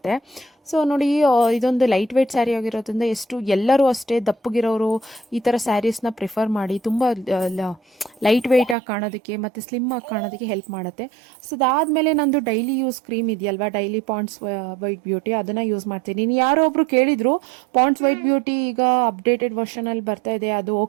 ಸೊ ನೋಡಿ, ಇದೊಂದು ಲೈಟ್ ವೆಯ್ಟ್ ಸ್ಯಾರಿ ಆಗಿರೋದ್ರಿಂದ ಎಲ್ಲರೂ ಅಷ್ಟೇ ದಪ್ಪಗಿರೋರು ಈ ಥರ ಸ್ಯಾರೀಸ್ನ ಪ್ರಿಫರ್ ಮಾಡಿ. ತುಂಬ ಲೈಟ್ ವೆಯ್ಟಾಗಿ ಕಾಣೋದಕ್ಕೆ ಮತ್ತು ಸ್ಲಿಮ್ ಆಗಿ ಕಾಣೋದಕ್ಕೆ ಹೆಲ್ಪ್ ಮಾಡುತ್ತೆ. ಸೊ ಅದಾದಮೇಲೆ ನಂದು ಡೈಲಿ ಯೂಸ್ ಕ್ರೀಮ್ ಇದೆಯಲ್ವಾ, ಡೈಲಿ ಪಾಂಡ್ಸ್ ವೈಟ್ ಬ್ಯೂಟಿ, ಅದನ್ನು ಯೂಸ್ ಮಾಡ್ತೀನಿ. ನೀನು ಯಾರೋ ಒಬ್ಬರು ಕೇಳಿದರು ಪಾಂಡ್ಸ್ ವೈಟ್ ಬ್ಯೂಟಿ ಈಗ ಅಪ್ಡೇಟೆಡ್ ವರ್ಷನಲ್ಲಿ ಬರ್ತಾ ಇದೆ, ಅದು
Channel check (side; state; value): left; drops out; at 8.8 s